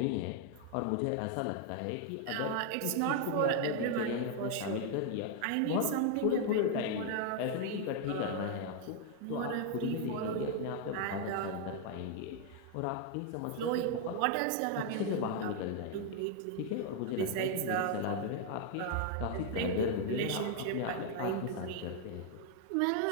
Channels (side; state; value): both; different; correlation 0.00